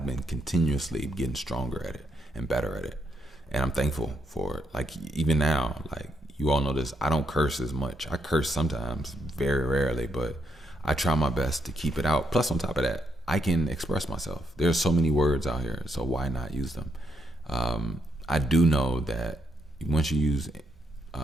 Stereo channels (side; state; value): both; normal; correlation 0.77